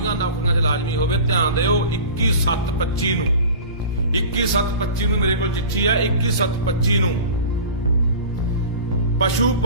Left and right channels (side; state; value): both; inverted; correlation -0.37